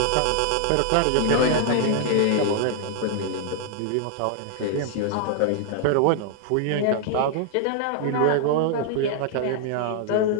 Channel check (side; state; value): both; different; correlation 0.00